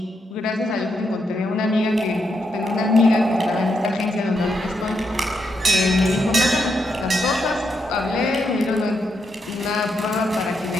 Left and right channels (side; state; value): both; normal; correlation 0.81